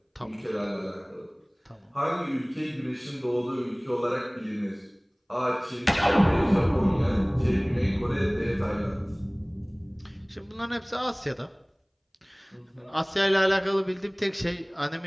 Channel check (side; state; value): both; identical; correlation 1.00